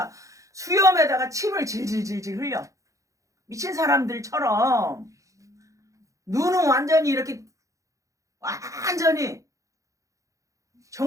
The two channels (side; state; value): left; late; 0.16 ms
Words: 수염에다가 침을 질질질질 흘려. 미친 사람들처럼 눈은 완전히 이렇게 완전히